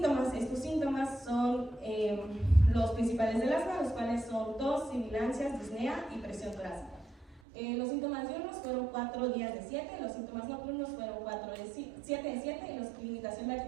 Estos síntomas son los principales del asma, los cuales son tos, sibilancias, disnea y presión torácica. Los síntomas diurnos fueron 4 días de 7, los síntomas nocturnos fueron 7 de 7, y la limitación de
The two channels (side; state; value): left; drops out; at 7.4 s